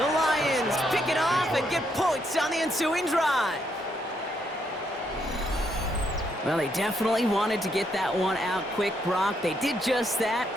The Lions pick it off and get points on the ensuing drive. Well, they definitely wanted to get that one out quick, Brock. They did just that,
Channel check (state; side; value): normal; both; correlation 0.75